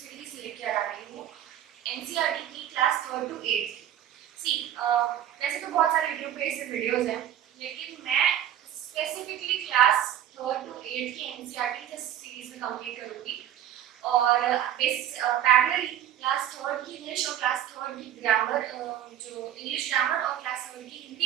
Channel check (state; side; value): quieter; left; 10.8 dB